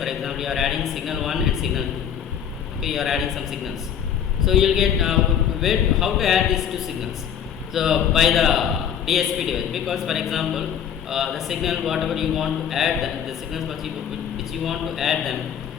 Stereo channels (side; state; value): right; quieter; 8.7 dB